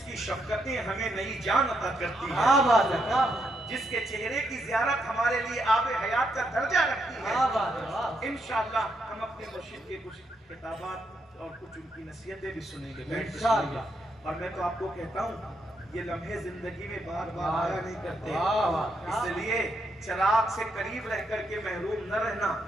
کی شفقتیں ہمیں نئی جان عطا کرتی کیا ہیں، بات ہے کیا بات جس کے چہرے کی زیارت ہمارے لیے آب حیات کا درجہ رکھتی ہے۔ کیا بات ہے واہ انشاءاللہ ہم اپنے مرشد کے کچھ کتابات اور کچھ ان کی نصیحتیں بھی سنیں گے، بیٹھ کے سنیں گے۔ اور میں تو آپ کو کہتا ہوں یہ لمحے زندگی میں بار بار آیا نہیں کرتے، واہ واہ اس لیے چراغ سے قریب رہ کر کے محروم نہ رہنا،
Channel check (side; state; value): both; normal; correlation 0.79